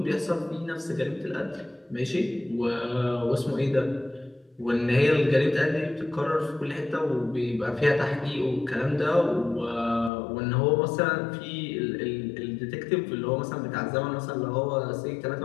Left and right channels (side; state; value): right; drops out; at 10.1 s